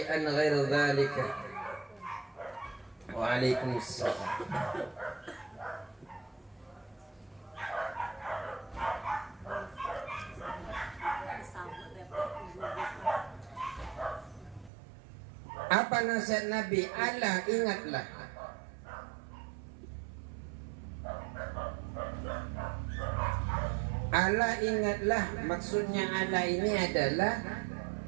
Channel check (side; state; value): left; drops out; at 14.7 s